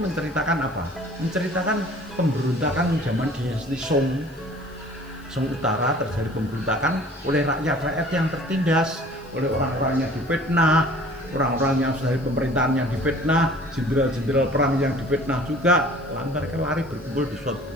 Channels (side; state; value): left; noise; hiss, 28 dB below the sound